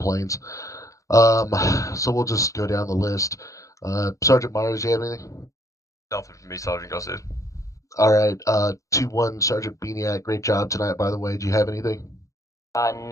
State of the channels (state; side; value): late; right; 0.16 ms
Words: So we'll just go down the list. Sergeant Myers, do you have anything? Nothing from me, Sergeant Gossett. All right. 2-1, Sergeant Beaniac. Great job tonight, by the way. Do you have anything?